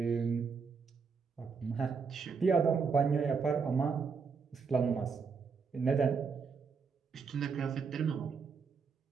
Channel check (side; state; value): left; quieter; 5.5 dB